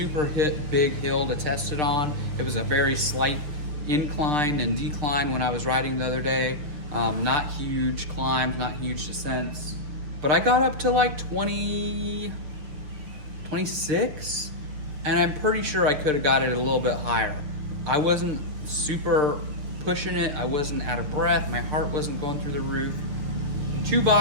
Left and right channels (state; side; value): late; left; 6.7 ms